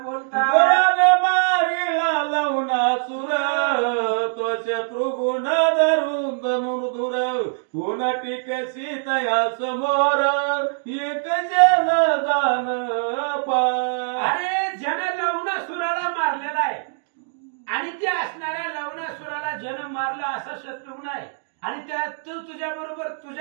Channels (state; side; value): silent; left; digital silence